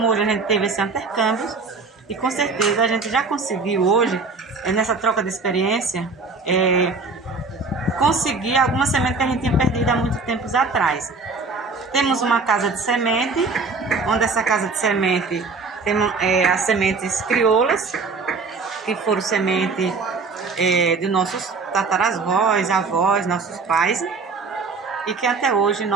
hoje a gente teve esse intercâmbio, e com certeza a gente já conseguiu hoje, nessa troca de experiência, conseguir alguma semente que a gente tinha perdido há muito tempos atrás. Temos uma casa de semente, onde essa casa de semente tem as sementes crioulas, que foram sementes de nossos tataravós, avós, nossos pais, e que até hoje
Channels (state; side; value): quieter; left; 4.3 dB